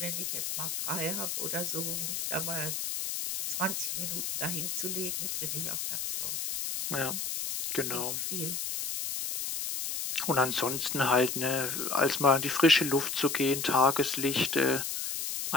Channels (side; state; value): left; noise; hiss, 3 dB below the sound